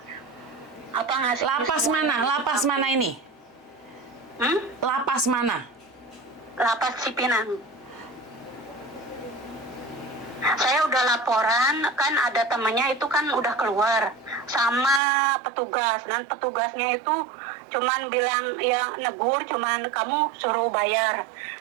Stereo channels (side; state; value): left; drops out; at 15.0 s